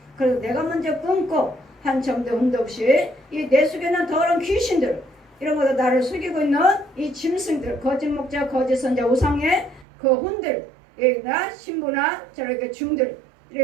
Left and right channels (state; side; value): drops out; left; at 9.9 s